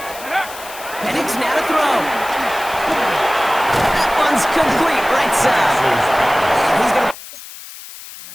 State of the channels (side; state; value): left; noise; hiss, 15 dB below the sound